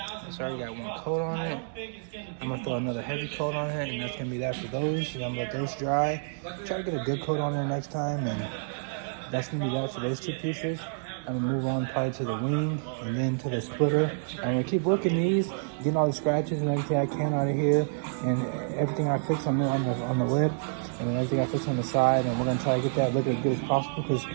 it's already got one coat on it. I'm gonna throw another heavy coat on it, and that's gonna be that for those. And I'm gonna let those dry. Try to get a good coat on there next time, and that's gonna be that for those two pieces. I'm gonna move on probably to the wing and then to the splitter. I'm gonna keep working these, getting all the scratches and everything I can out of here, and everything I fix on the lip, and then everything I fix on the side. And we're gonna try to get that look as good as possible, because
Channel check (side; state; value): left; silent; digital silence